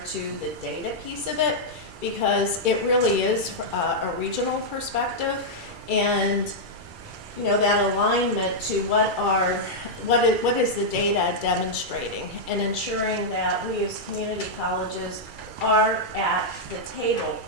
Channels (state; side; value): late; left; 2.3 ms